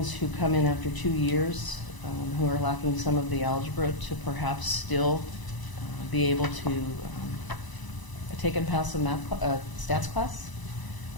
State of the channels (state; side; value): late; right; 1.0 ms